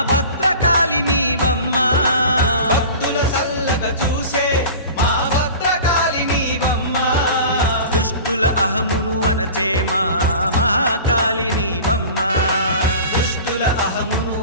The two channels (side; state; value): both; inverted; correlation -0.38